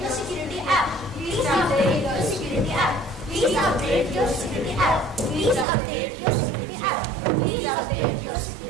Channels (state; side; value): drops out; left; at 5.7 s